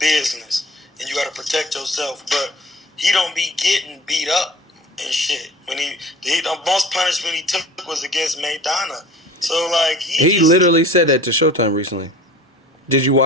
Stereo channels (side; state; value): both; normal; correlation 0.42